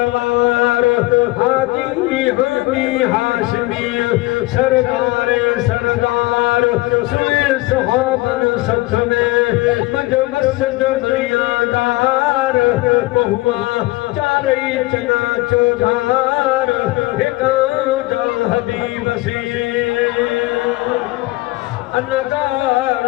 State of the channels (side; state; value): right; quieter; 20.2 dB